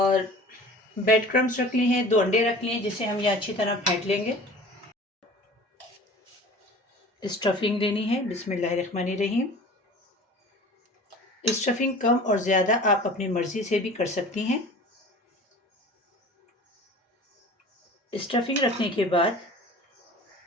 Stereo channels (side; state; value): both; normal; correlation 0.42